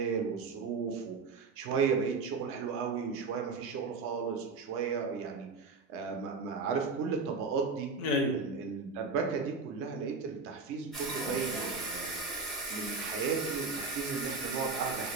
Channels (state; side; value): quieter; left; 4.3 dB